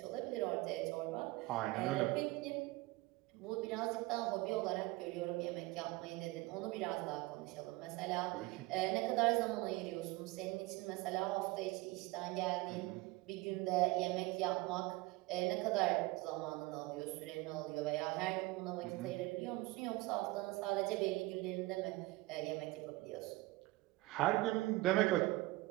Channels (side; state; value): left; quieter; 21.1 dB